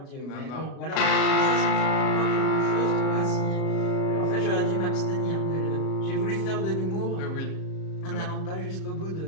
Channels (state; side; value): late; right; 37 ms